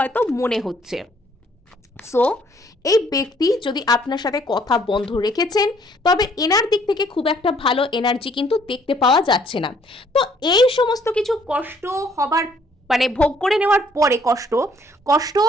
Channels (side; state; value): both; normal; correlation 0.63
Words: মনে হচ্ছে। সো এই ব্যক্তি যদি আপনার সাথে কথা বন্ধ রেখেছেন, তবে এনার দিক থেকে খুব একটা ভালো এনার্জি কিন্তু দেখতে পাওয়া যাচ্ছে না। তো এই সমস্ত কিছু কষ্ট হবার ভোগ করে নেওয়ার পরে, কষ্ট